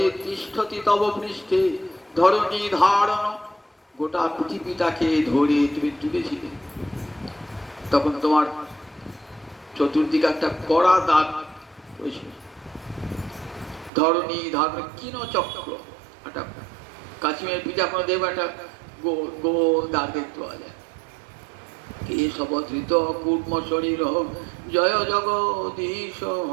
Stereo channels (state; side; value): drops out; left; at 13.9 s